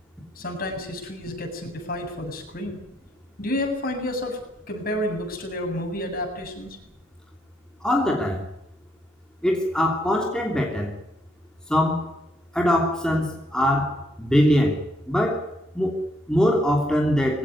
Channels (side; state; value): both; normal; correlation 0.73